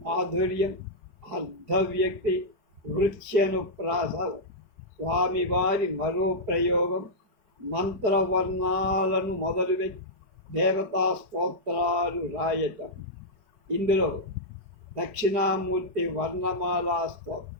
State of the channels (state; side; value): late; left; 5.1 ms